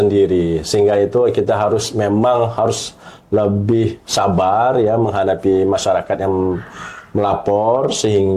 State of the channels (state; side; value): identical; both; correlation 1.00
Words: sehingga itu kita memang harus lebih sabar ya menghadapi masyarakat yang melapor,